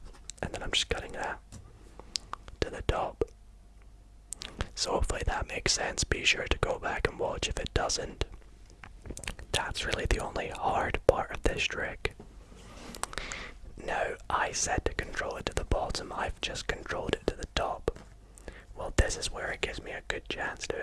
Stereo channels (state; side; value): identical; both; correlation 1.00